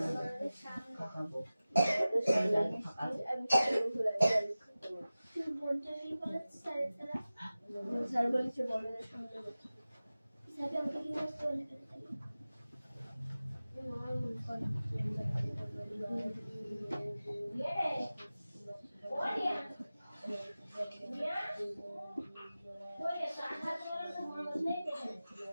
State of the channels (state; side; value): inverted; both; correlation -0.96